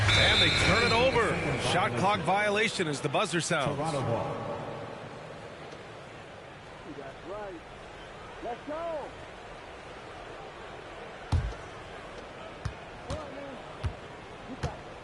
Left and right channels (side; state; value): both; identical; correlation 1.00